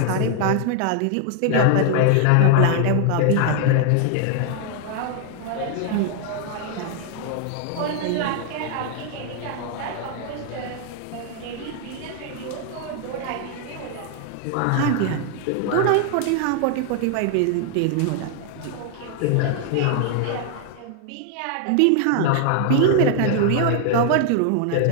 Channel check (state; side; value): different; both; correlation 0.00